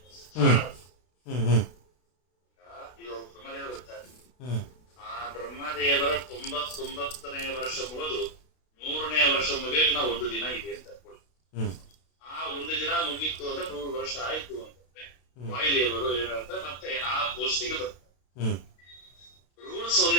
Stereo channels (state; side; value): late; right; 32 ms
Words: ಆ ಬ್ರಹ್ಮದೇವರ 99ನೇ ವರ್ಷ ಮುಗಿದು 100ನೇ ವರ್ಷ ಮುಗಿಯೋಕೆ ನಾವು ಒಂದು ದಿನ ಇದೆ ಅಂತ ಅನ್ಕೊಳ್ಳಿ. ಆ ಒಂದು ದಿನ ಮುಗೀತು ಅಂದ್ರೆ 100 ವರ್ಷ ಆಯ್ತು ಅಂತಂದ್ರೆ ವಾಯುದೇವರು ಏನಂತ ಮತ್ತೆ ಆ ಪೋಸ್ಟಿಗೆ ಬರ್ತಾರೆ. ರೂಲ್ಸ್